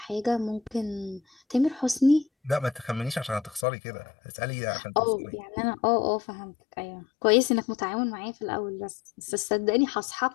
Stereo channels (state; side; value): drops out; right; at 3.7 s